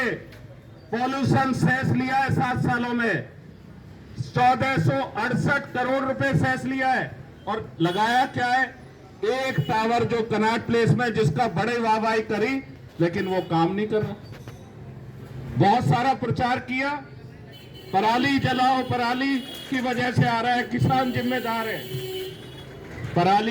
पॉल्यूशन सेस लिया है 7 सालों में। 1468 करोड़ रुपए सेस लिया है और लगाया क्या है? एक टावर जो कनॉट प्लेस में, जिसका बड़े वाहवाही करी, लेकिन वो काम नहीं कर रहा। बहुत सारा प्रचार किया, पराली जलाओ, पराली की वजह से आ रहा है, किसान जिम्मेदार है।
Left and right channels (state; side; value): identical; both; correlation 1.00